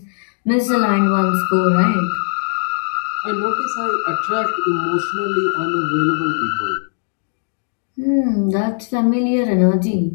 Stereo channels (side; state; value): right; silent; digital silence